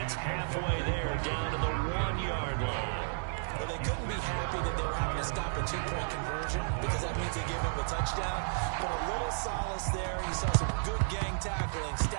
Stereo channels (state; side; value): silent; left; digital silence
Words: halfway there, down to the 1-yard line. Well, they couldn't be happy that they were having to stop a 2-point conversion, because that means they gave up a touchdown. But a little solace there. You saw some good gang tackling,